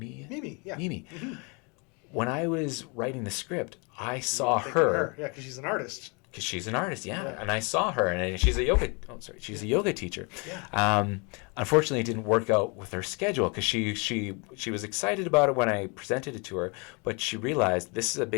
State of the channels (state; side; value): quieter; right; 31.8 dB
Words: Mimi. When I was writing the script, I saw her. Yeah, because she's an artist. Because she's an artist, and I saw her, and she's a yoga teacher. Unfortunately, it didn't work out with her schedule, because she was excited about it when I presented it to her, but she realized this is a